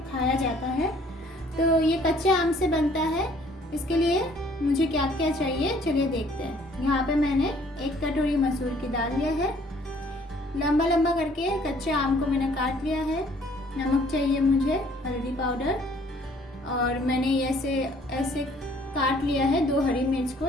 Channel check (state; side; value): normal; both; correlation 0.59